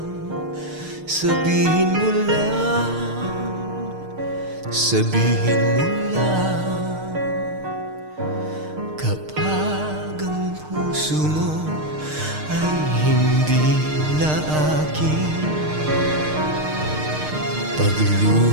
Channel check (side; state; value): left; late; 6.5 ms